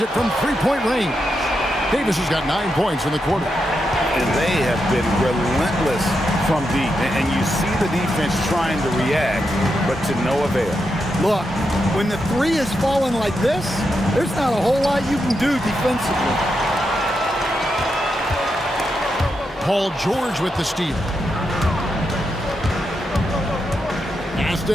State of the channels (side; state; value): both; normal; correlation 0.85